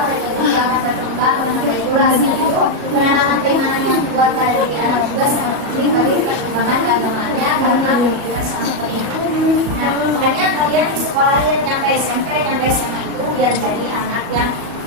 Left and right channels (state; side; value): late; left; 37 ms